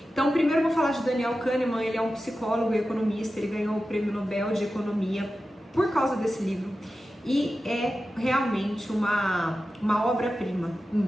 Então, primeiro eu vou falar de Daniel Kahneman. Ele é um psicólogo e economista, ele ganhou o Prêmio Nobel de Economia por causa desse livro. E é realmente uma obra-prima,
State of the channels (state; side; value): normal; both; correlation 0.93